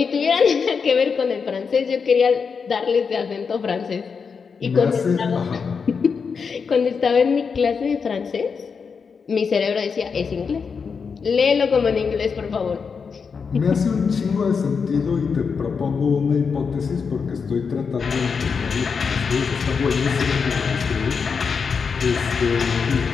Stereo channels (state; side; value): quieter; right; 5.7 dB